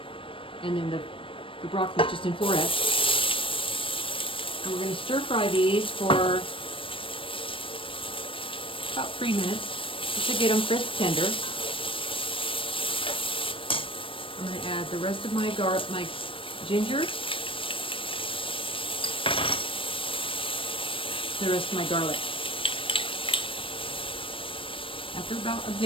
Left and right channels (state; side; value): late; right; 0.25 ms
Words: and then the broccoli is just in florets. And we're going to stir fry these for about 3 minutes just to get them crisp tender. I'm going to add the rest of my ginger, the rest of my garlic. After about a